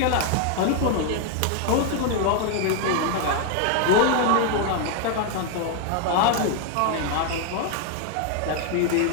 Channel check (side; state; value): both; different; correlation 0.01